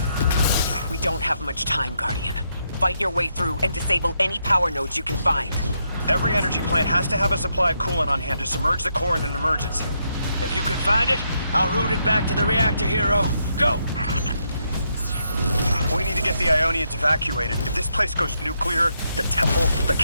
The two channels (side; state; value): both; inverted; correlation -0.79